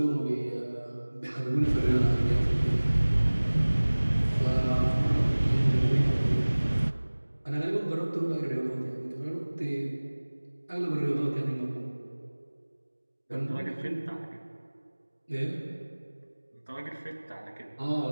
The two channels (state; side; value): inverted; both; correlation -1.00